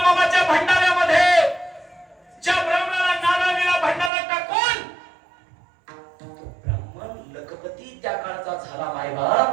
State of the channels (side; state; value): left; drops out; at 4.1 s